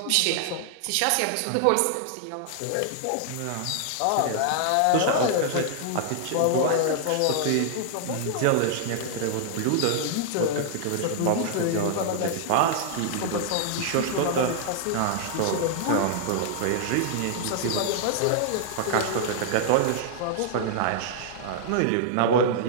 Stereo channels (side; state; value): both; different; correlation -0.01